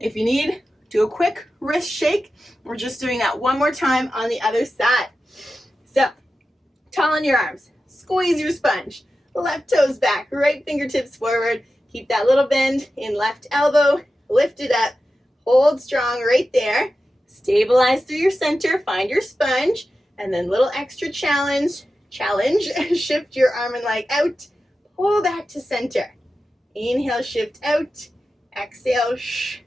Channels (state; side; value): normal; both; correlation 0.92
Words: you need, do a quick wrist shake. We're just doing that 1 more time on the other side. So, tall in your arms, squeeze your sponge, left toes back, right fingertips forward. Keep that little bend in left elbow, lift it up. Hold strong right there. Stabilize through your center. Find your sponge. And then little extra challenge. Shift your arm and leg out. Pull back to center. Inhale, shift out. Exhale,